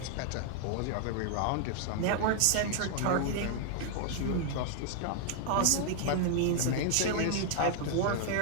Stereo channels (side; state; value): both; different; correlation 0.00